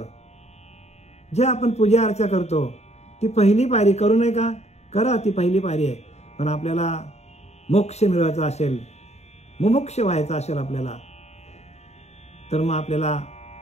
जे आपण पूजा अर्चा करतो, ती पहिली पायरी करू नये का, करा, ती पहिली पायरी आहे. पण आपल्याला मोक्ष मिळवायचा असेल, मुमुक्ष व्हायचा असेल आपल्याला, तर मग आपल्याला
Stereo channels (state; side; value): late; right; 0.32 ms